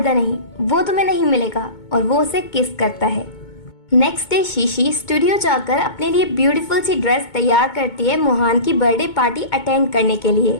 नहीं, वो तुम्हें नहीं मिलेगा, और वो उसे किस करता है। नेक्स्ट डे शीशी स्टूडियो जाकर अपने लिए ब्यूटीफुल सी ड्रेस तैयार करती है मुहान की बर्थडे पार्टी अटेंड करने के लिए।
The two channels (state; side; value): late; right; 2.2 ms